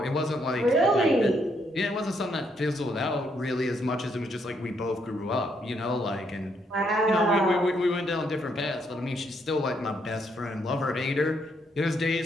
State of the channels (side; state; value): both; normal; correlation 0.74